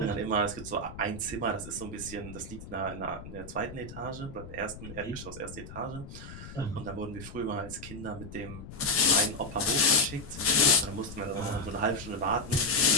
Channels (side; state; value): left; noise; rumble, 13 dB below the sound